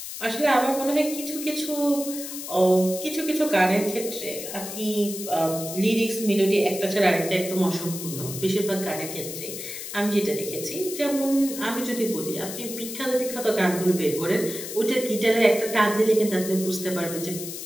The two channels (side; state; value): left; noise; hiss, 8 dB below the sound